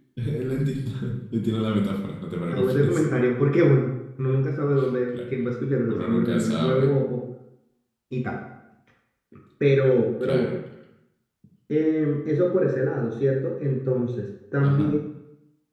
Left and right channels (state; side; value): identical; both; correlation 1.00